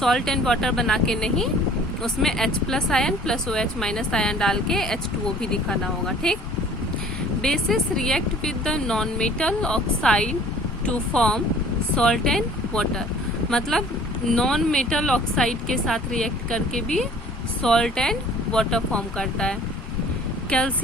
एंड वाटर बना के नहीं, उसमें H+ ion plus OH- ion डाल के H2O भी दिखाना होगा। ठीक। Bases react with the non metal oxide to form salt and water, मतलब नॉन मेटल ऑक्साइड के साथ रिएक्ट करके भी सॉल्ट एंड वाटर फॉर्म करता है।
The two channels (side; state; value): both; normal; correlation 0.51